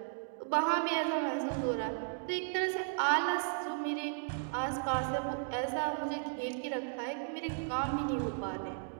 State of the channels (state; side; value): silent; left; digital silence